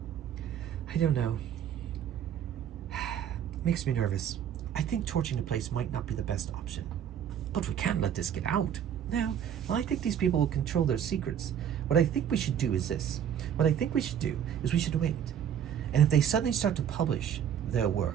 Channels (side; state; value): left; quieter; 9.2 dB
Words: I don't know. Makes me nervous. I think torching the place might not be the best option. But we can't let this get out. No. Well, I think these people will control their secrets. What I think we should do is this. What I think we should do is we should wait. And if they suddenly start to publish their